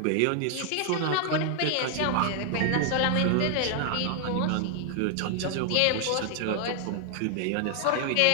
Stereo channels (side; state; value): both; different; correlation 0.00